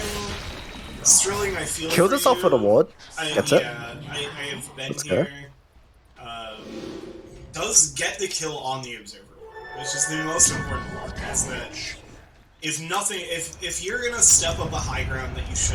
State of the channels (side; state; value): both; identical; correlation 1.00